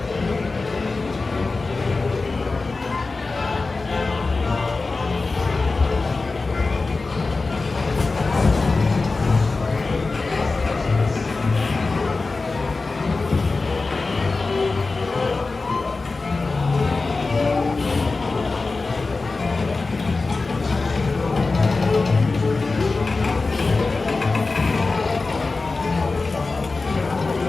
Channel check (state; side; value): quieter; right; 3.8 dB